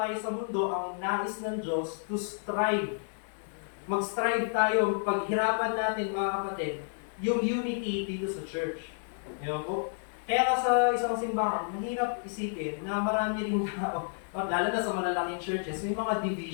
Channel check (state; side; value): silent; right; digital silence